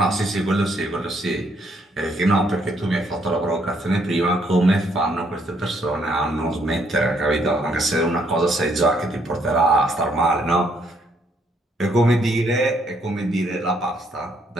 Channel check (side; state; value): both; normal; correlation 0.70